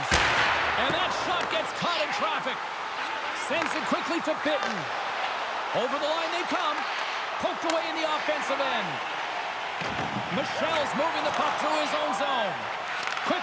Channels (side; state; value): both; identical; correlation 1.00